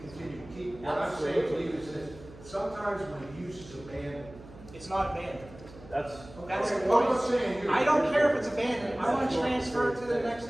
to keep. What I'm saying to you is that sometimes when a use is abandoned. It's not abandoned. That's, That's the Okay, well, I'm not point. saying you. I don't care if it's abandoned. I want to transfer it to the next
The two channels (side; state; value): right; noise; hum, 19 dB below the sound